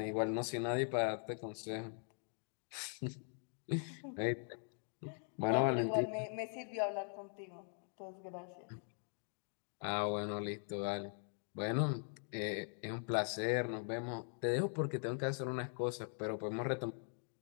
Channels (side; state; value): right; silent; 50 dB below the other